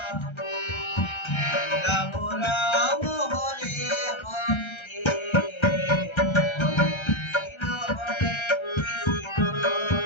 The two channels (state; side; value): late; right; 1.3 ms